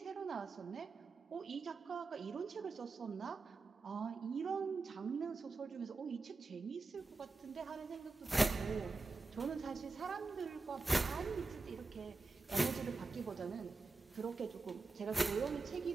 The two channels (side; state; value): left; quieter; 3.7 dB